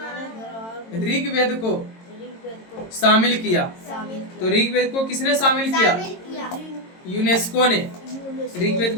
ऋग्वेद को शामिल किया। तो ऋग्वेद को किसने शामिल किया? शामिल किया। यूनेस्को ने। ऋग्वेद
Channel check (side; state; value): right; late; 22 ms